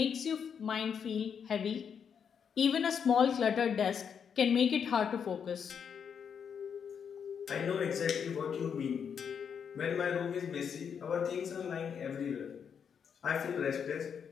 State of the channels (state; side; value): quieter; right; 7.2 dB